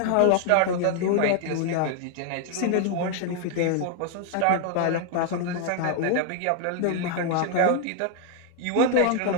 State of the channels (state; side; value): different; both; correlation 0.00